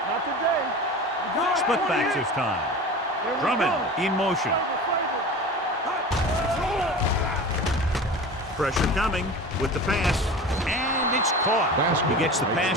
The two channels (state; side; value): normal; both; correlation 0.34